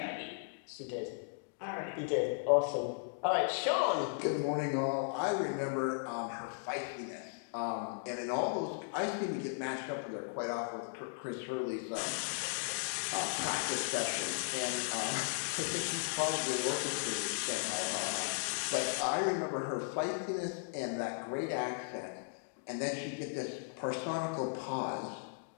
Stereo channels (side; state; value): right; silent; digital silence